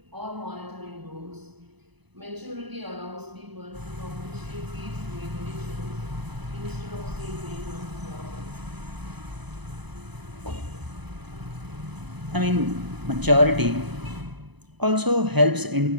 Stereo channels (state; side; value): late; left; 0.99 ms